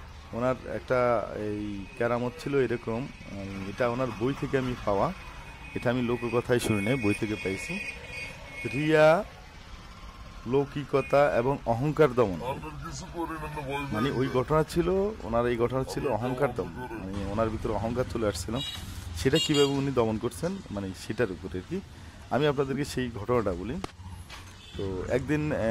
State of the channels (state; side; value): identical; both; correlation 1.00